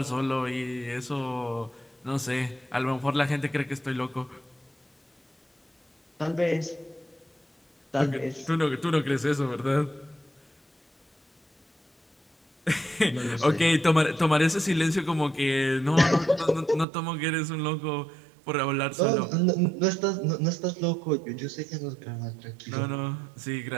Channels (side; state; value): left; drops out; at 16.9 s